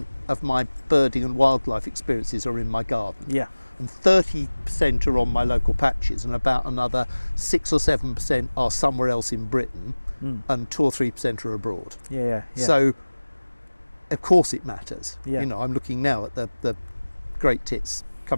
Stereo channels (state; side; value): inverted; both; correlation -1.00